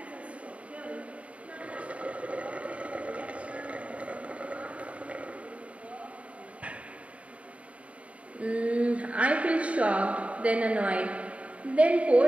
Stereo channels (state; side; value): late; left; 0.064 ms